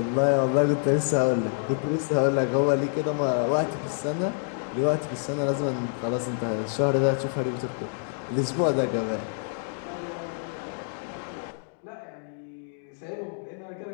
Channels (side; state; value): right; silent; digital silence